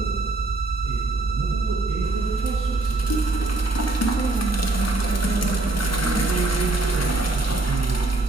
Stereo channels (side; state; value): left; quieter; 3.0 dB